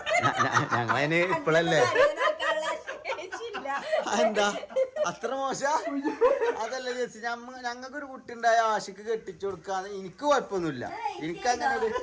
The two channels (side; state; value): both; identical; correlation 1.00